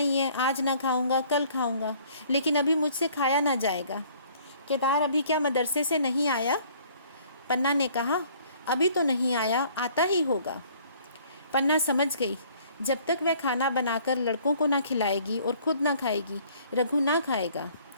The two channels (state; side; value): inverted; both; correlation -0.57